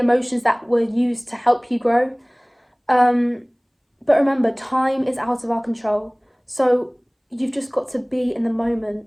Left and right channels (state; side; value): identical; both; correlation 1.00